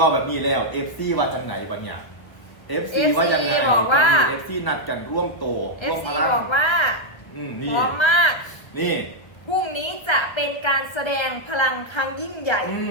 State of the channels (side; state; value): right; late; 1.4 ms